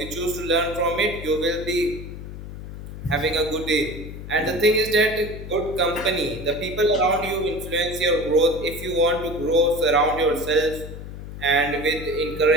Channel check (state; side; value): noise; left; hum, 11 dB below the sound